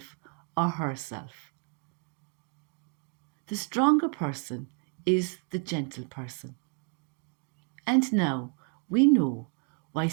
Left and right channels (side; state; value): left; quieter; 36.4 dB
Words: or herself. The stronger person is the gentle person. And now we know why